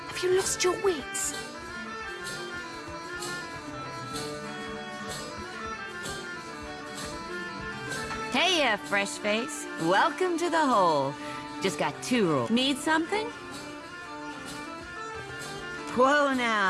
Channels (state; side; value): identical; both; correlation 1.00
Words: Have you lost your wits? Hey, fresh face. Welcome to the hole. Just got 2 rules. Need something? Whoa